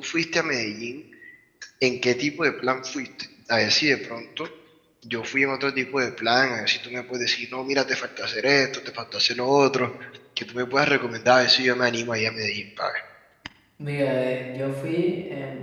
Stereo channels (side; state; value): both; identical; correlation 1.00